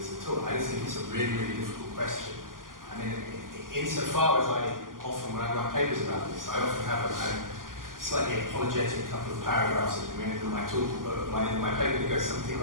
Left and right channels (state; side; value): late; left; 0.90 ms